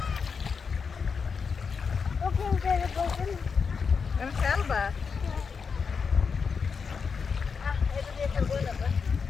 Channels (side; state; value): right; quieter; 5.6 dB